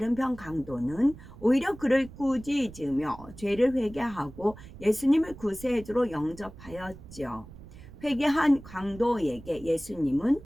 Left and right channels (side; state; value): right; noise; rumble, 17 dB below the sound